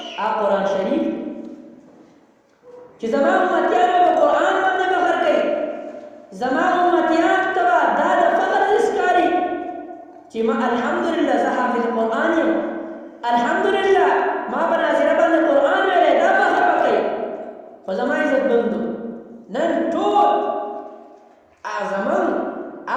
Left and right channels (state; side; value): identical; both; correlation 1.00